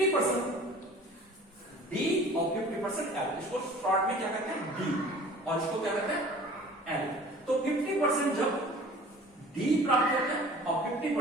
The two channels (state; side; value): normal; both; correlation 0.46